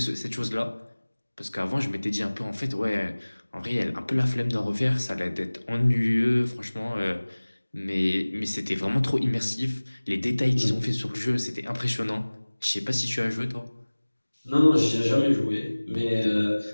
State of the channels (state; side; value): inverted; both; correlation -1.00